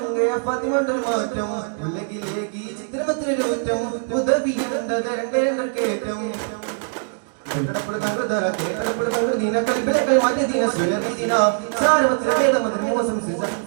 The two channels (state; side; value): silent; left; digital silence